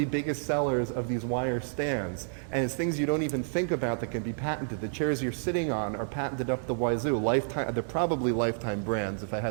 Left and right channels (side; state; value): left; silent; digital silence